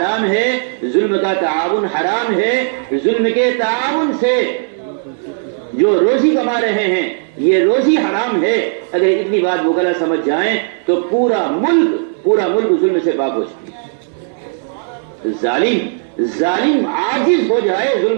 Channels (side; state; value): left; silent; 60 dB below the other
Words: ہے، ظلم کا تعاون حرام ہے، ظلم کے تعاون سے جو روزی کما رہے ہیں یہ روزی حرام ہے، اگر اتنی بات وکلا سمجھ جائیں تو پورا ملک ظلم سے پاک ہو جائے۔ ظالم عاجز ہو جائے